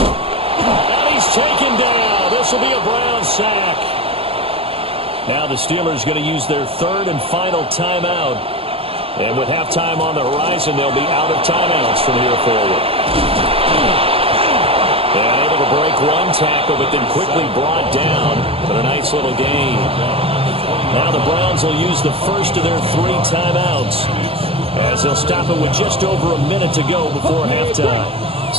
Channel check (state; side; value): late; left; 0.28 ms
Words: he's taken down. This will be a Brown sack. Now the Steelers going to use their third and final timeout. And with halftime on the horizon, they'll be out of timeouts from here forward. And able to break one tackle, but then quickly brought down. But a nice little gain. Now the Browns will use the first of their three timeouts, as they'll stop it with just over a minute to go before halftime.